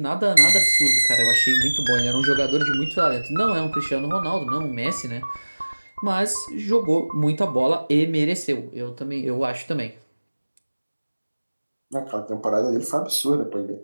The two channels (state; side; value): inverted; both; correlation -1.00